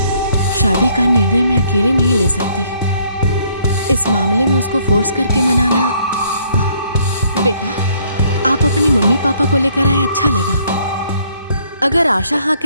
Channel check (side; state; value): both; inverted; correlation -0.65